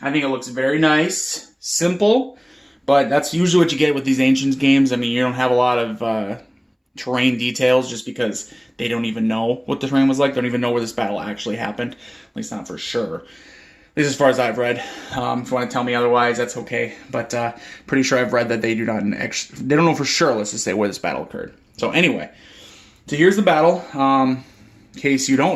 think it looks very nice, simple, but that's usually what you get with these Ancients games. I mean, you don't have a lot of terrain details just because they don't even know what the terrain was like. They don't even know where this battle actually happened, at least not for sure. At least as far as I've read. If you want to tell me otherwise, that's okay. But pretty sure I've read that they don't know for sure, let's just say, where this battle occurred. So anyway, so here's the battle. In case you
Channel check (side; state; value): both; identical; correlation 1.00